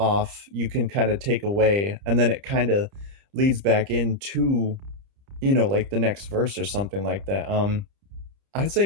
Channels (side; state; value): left; late; 30 ms